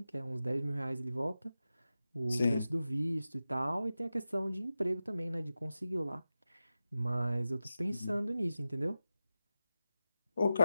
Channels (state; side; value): inverted; both; correlation -0.93